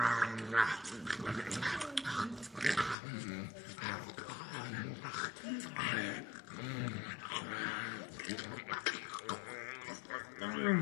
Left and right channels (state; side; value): drops out; right; at 3.0 s